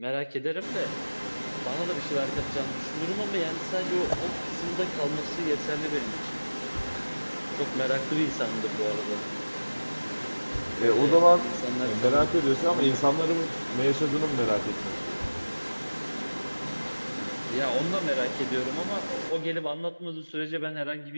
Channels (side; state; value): both; inverted; correlation -1.00